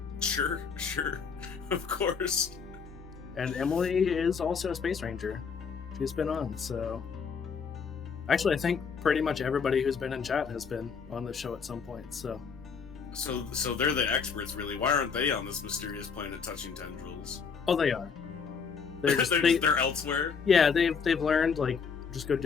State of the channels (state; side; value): quieter; right; 5.9 dB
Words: Sure. Of course. And Emily is also a space ranger. She's been on, so... Actually, I think pretty much everybody who's been in chat has been on the show at some point, so... So they're the experts, really. Why aren't they on this mysterious planet touching tendrils? Oh, they are. They're elsewhere? Yeah, they've learned, like, just go